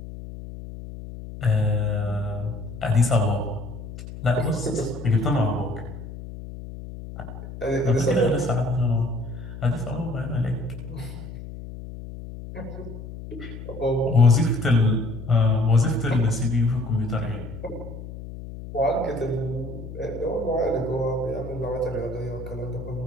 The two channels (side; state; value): left; noise; hum, 11 dB below the sound